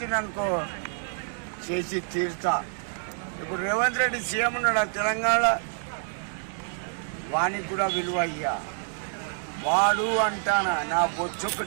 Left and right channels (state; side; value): silent; left; digital silence